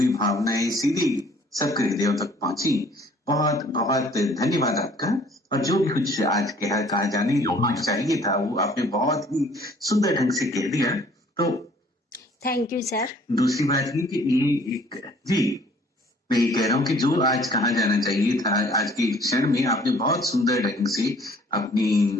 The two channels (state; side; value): normal; both; correlation 0.56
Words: भावनाएं सीधी सबके हृदयों तक पहुंची। बहुत बहुत धन्यवाद आपका। और जो भी कुछ आज कहा जाने चाहिए था वो आपने बहुत ही सुंदर ढंग से कह दिया। तो थैंक यू सर। दूसरी बात ये कि ये एक जी मैं ये कह रहा हूँ कि जो आज कहा जाना चाहिए था आज के क्षण में आपने बहुत सुंदर ढंग से